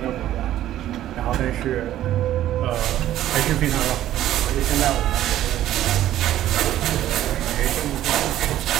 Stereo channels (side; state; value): left; quieter; 12.9 dB